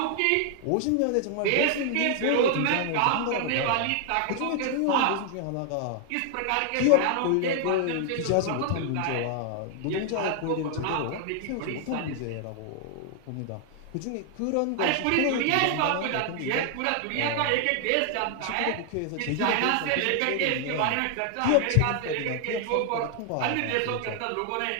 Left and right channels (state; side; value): different; both; correlation 0.00